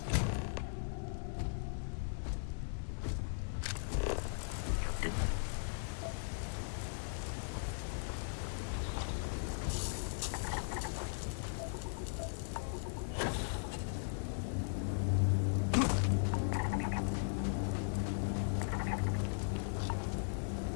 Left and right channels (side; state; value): right; silent; 52 dB below the other